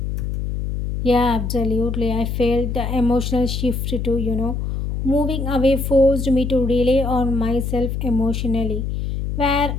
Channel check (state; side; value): noise; left; hum, 3 dB below the sound